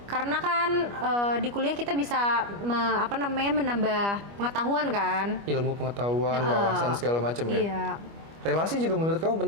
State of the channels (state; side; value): late; left; 25 ms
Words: Karena kan di kuliah kita bisa menambah pengetahuan kan. Ilmu pengetahuan, wawasan segala macam ya. Iya. Relasi juga menurut kamu